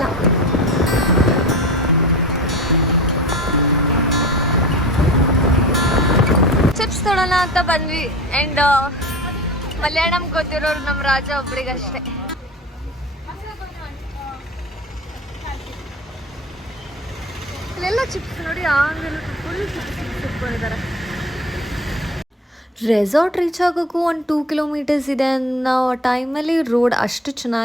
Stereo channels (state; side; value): normal; both; correlation 0.36